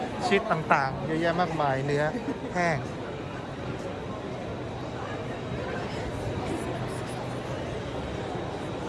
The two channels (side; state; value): both; identical; correlation 1.00